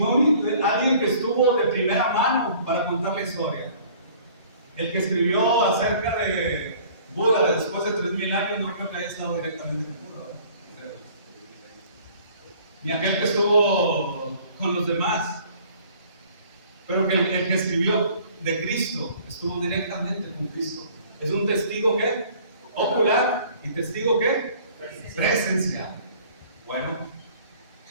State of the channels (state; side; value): inverted; both; correlation -0.53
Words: alguien que estuvo de primera mano para contar la historia. El que escribió acerca de Buda después de 3000 años, no creo que haya estado directamente con Buda, ¿verdad? Ni aquel que estuvo con los demás. Pero que el que escribió de Cristo estuvo directamente con Cristo. Es un testigo ¿qué? Ocular, y testigo ¿qué? Presencial. Bueno,